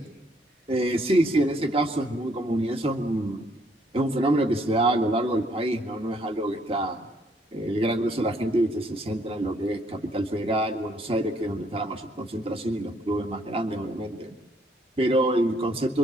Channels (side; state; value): both; normal; correlation 0.68